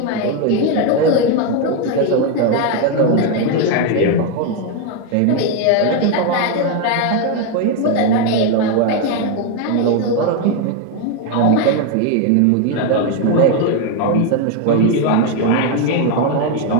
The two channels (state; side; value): different; both; correlation 0.02